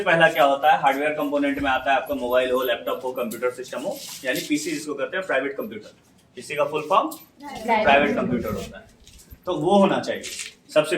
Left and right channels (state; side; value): identical; both; correlation 1.00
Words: पहला क्या होता है, हार्डवेयर कंपोनेंट में आता है आपका मोबाइल हो, लैपटॉप हो, कंप्यूटर सिस्टम हो, यानी पीसी जिसको कहते हैं प्राइवेट कंप्यूटर। पीसी का फुल फॉर्म प्राइवेट कंप्यूटर होता है। तो वो होना चाहिए सबसे